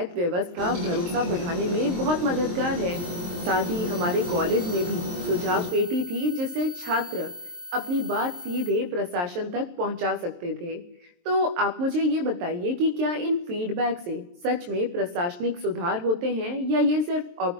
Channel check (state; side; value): late; left; 23 ms